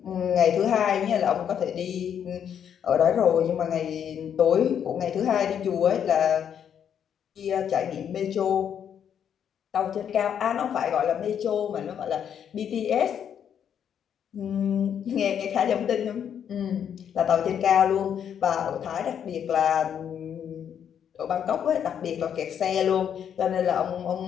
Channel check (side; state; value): right; quieter; 8.6 dB